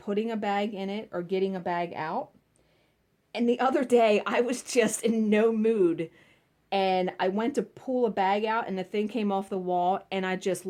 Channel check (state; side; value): identical; both; correlation 1.00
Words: a bag in it or getting a bag out. And the other day, I was just in no mood. And I went to pull a bag out and the thing came off the wall and I just